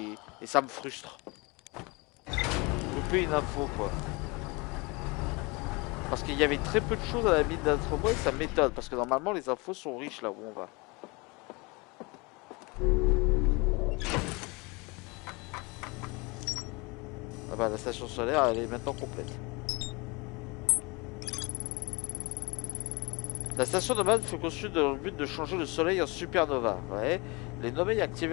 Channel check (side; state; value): right; quieter; 26.8 dB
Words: ça me frustre. Loupé une info quoi. Parce qu'il y avait très peu de choses à la mine d'Atrebois et ça m'étonne parce que normalement les infos sont riches là où on va. Ah bah la station solaire elle est maintenant complète. La station nomade fut conçue dans le but de changer le soleil en supernova. Ouais. Les Nomades